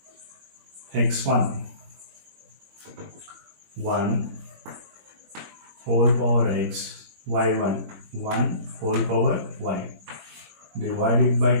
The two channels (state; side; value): late; left; 21 ms